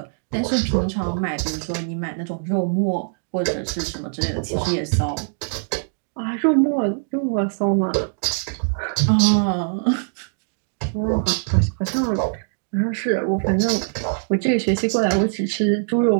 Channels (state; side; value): silent; left; digital silence